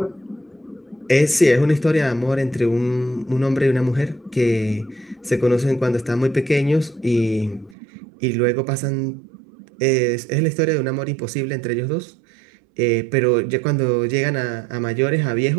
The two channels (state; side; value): drops out; left; at 7.8 s